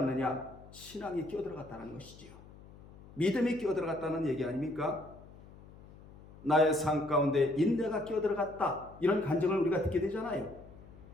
신앙이 끼어들어갔다는 것이지요. 믿음이 끼어들어갔다는 얘기 아닙니까? 나의 삶 가운데 인내가 끼어들어갔다, 이런 간증을 우리가 듣게 되잖아요.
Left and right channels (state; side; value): noise; left; hum, 20 dB below the sound